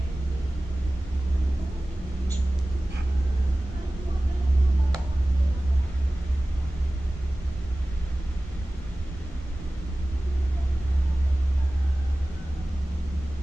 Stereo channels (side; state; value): both; normal; correlation 0.96